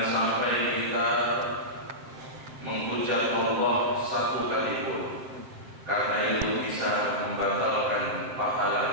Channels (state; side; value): late; left; 7.6 ms